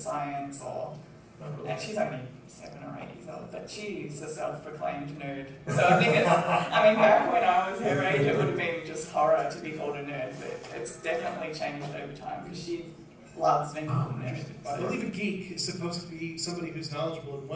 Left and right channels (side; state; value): both; identical; correlation 1.00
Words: and she's only 7 or 8 years old, but she's a self-proclaimed nerd. So I think back when I was her age, it would have been just horror to be called a nerd, but it's definitely changed over time because she loves being called a nerd. I believe a geek is supposed to be somebody who's knowledgeable in